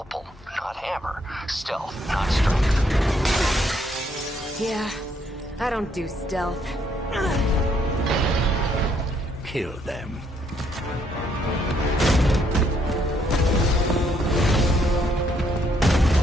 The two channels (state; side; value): normal; both; correlation 0.71